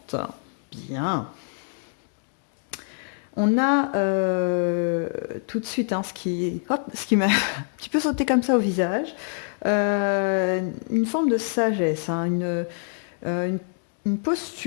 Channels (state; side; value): silent; right; digital silence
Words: Bien. On a tout de suite ce qui m'a un petit peu sauté comme ça au visage, une forme de sagesse, une une